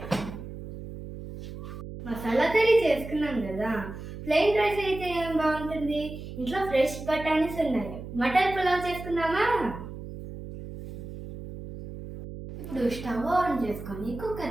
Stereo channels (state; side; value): noise; right; hum, 11 dB below the sound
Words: మసాలా కర్రీ చేసుకున్నాం కదా, ప్లెయిన్ రైస్ అయితే ఏం బాగుంటుంది. ఇంట్లో ఫ్రెష్ బఠానీస్ ఉన్నాయి. మటన్ పులావ్ చేసుకుందామా? ఇప్పుడు స్టవ్ ఆన్ చేసుకొని